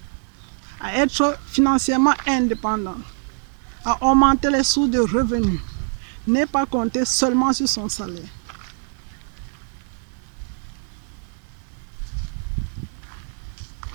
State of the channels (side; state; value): left; silent; 62 dB below the other